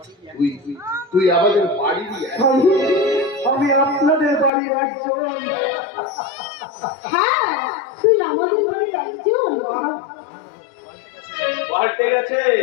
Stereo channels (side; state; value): right; drops out; at 4.5 s